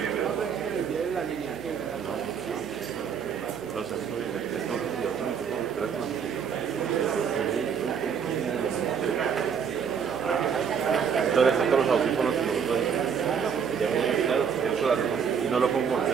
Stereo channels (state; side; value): quieter; left; 7.1 dB